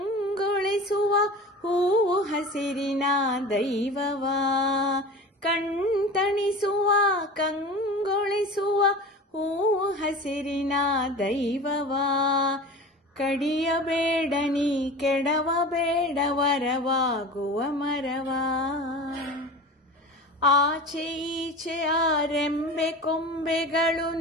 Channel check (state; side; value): normal; both; correlation 0.35